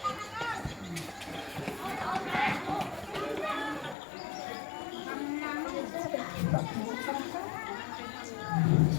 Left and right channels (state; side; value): drops out; right; at 4.0 s